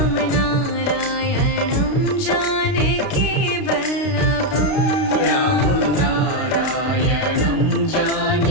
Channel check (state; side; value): late; right; 32 ms